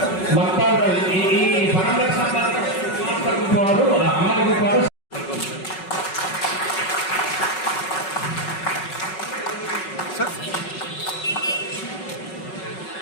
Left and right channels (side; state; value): right; late; 5.4 ms